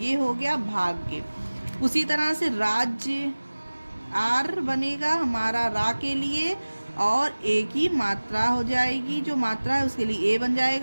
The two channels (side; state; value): both; inverted; correlation -1.00